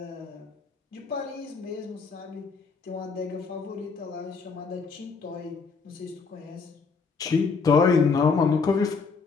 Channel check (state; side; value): quieter; right; 4.9 dB